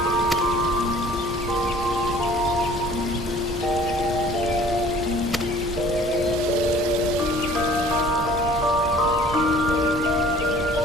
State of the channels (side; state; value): both; normal; correlation 0.50